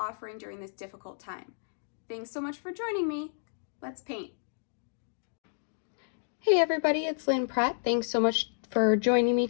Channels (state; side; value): silent; right; digital silence